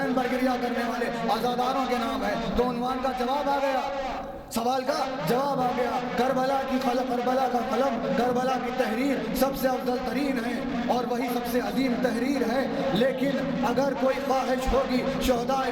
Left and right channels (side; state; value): both; identical; correlation 1.00